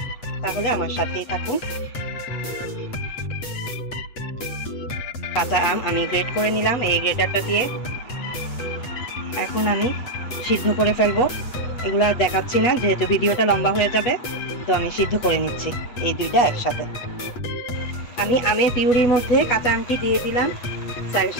তাহলে আমার সাথেই থাকুন। কাঁচা আম আমি গ্রেট করে নিলাম এই গ্রেটারটা দিয়ে। এখন আমি সিদ্ধ করে ফেলবো। এগুলো আর দেখাচ্ছি না, যেহেতু ভিডিওটা লম্বা হয়ে যাবে। তো আমি সিদ্ধ করে নিচ্ছি এই দুইটা একসাথে। আমি আমের পিউরির মধ্যে কাঁচা আমটি দিয়ে দিলাম,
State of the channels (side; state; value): right; late; 8.2 ms